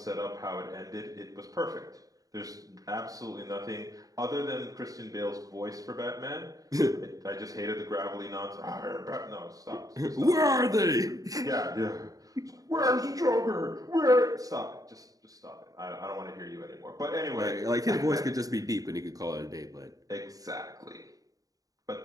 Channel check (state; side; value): late; left; 0.17 ms